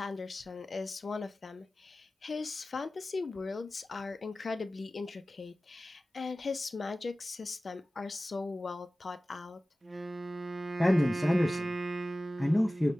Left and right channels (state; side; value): normal; both; correlation 0.96